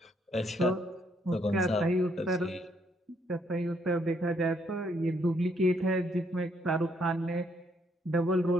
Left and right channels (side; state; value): both; normal; correlation 0.71